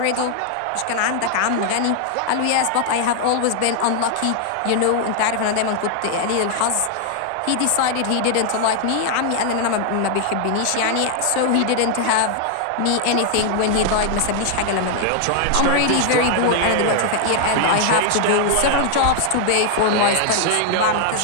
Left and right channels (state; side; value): different; both; correlation 0.00